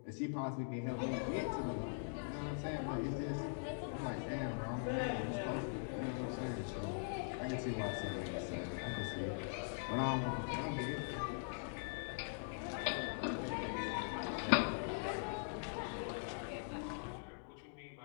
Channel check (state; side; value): silent; right; digital silence